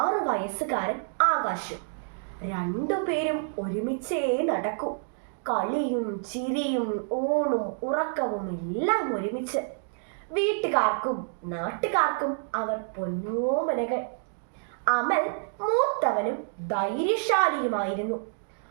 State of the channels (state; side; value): silent; left; digital silence